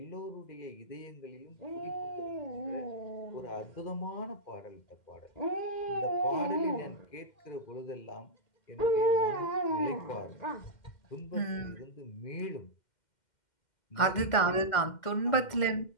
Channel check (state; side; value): late; right; 2.1 ms